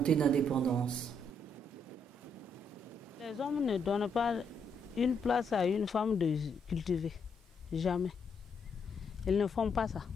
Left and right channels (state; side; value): normal; both; correlation 0.75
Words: d'indépendance? Les hommes ne donnent pas une place à une femme de cultiver. Jamais. Ils ne font pas ça.